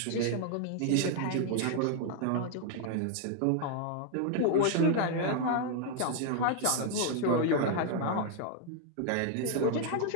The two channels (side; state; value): both; different; correlation 0.00